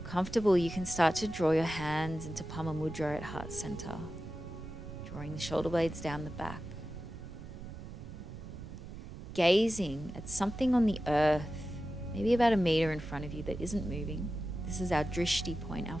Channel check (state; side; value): noise; right; rumble, 12 dB below the sound